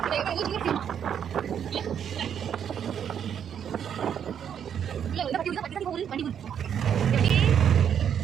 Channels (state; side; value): quieter; left; 8.6 dB